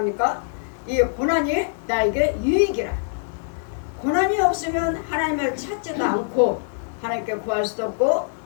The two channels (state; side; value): silent; right; 63 dB below the other